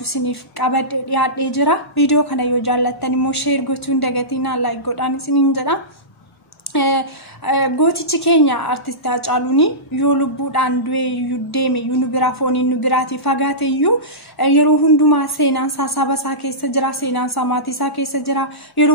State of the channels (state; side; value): normal; both; correlation -0.18